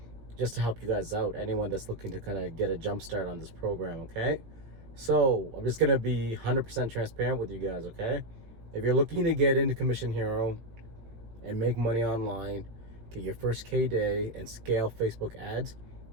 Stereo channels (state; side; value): late; left; 17 ms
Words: just to help you guys out. Anyone that's looking to kind of get a jump start on this program, okay? So I'm just going to be 100% transparent with you guys, okay? If you're looking to get into commission hero and make money online, get your first K day and scale Facebook ads,